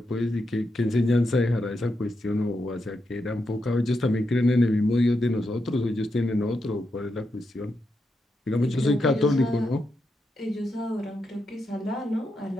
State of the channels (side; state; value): both; normal; correlation 0.85